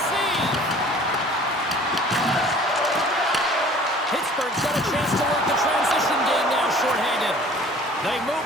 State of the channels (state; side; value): normal; both; correlation 0.49